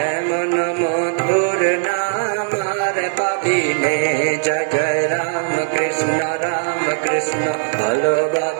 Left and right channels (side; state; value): left; silent; digital silence